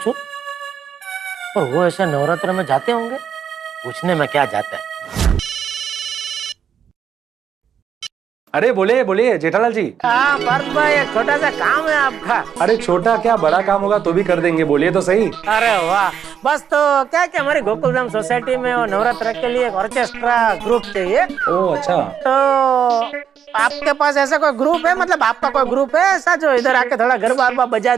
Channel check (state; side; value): quieter; left; 8.1 dB